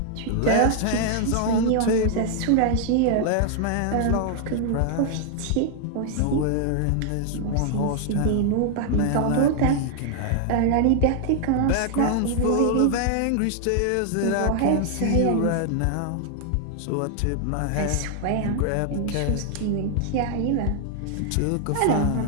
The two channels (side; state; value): both; different; correlation 0.00